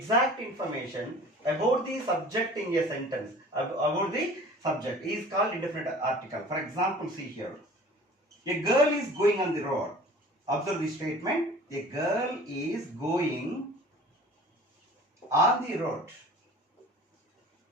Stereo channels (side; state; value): both; normal; correlation 0.44